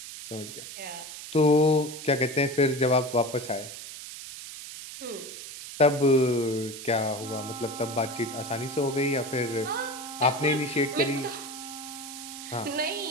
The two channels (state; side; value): noise; right; hiss, 11 dB below the sound